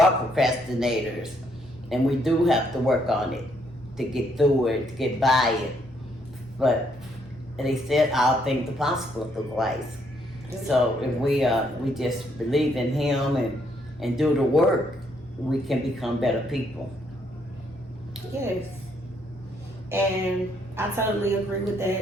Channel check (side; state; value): both; normal; correlation 0.72